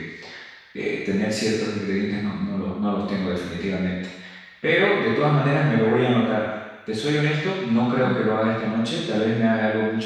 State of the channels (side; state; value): both; identical; correlation 1.00